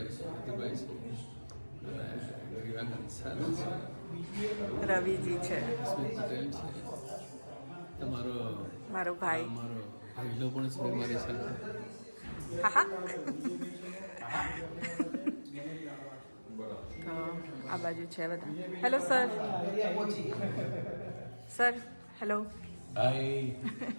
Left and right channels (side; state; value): both; inverted; correlation -1.00